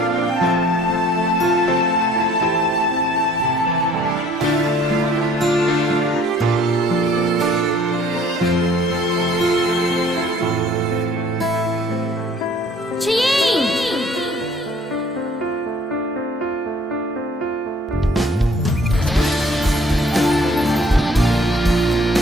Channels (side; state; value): both; normal; correlation 0.56